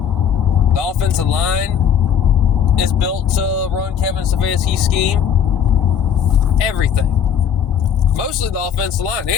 The offensive line is built to run Kevin Stefanski's scheme. Everything. Mostly the offensive line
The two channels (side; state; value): right; quieter; 8.2 dB